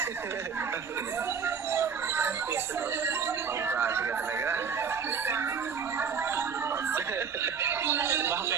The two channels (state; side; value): quieter; left; 6.4 dB